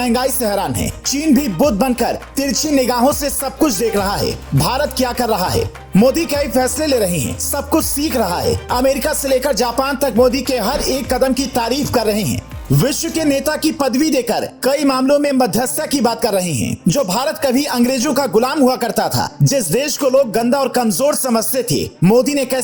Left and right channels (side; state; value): both; identical; correlation 1.00